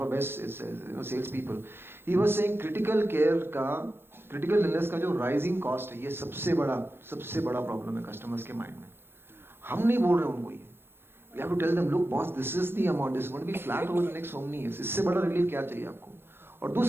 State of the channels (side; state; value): left; late; 0.11 ms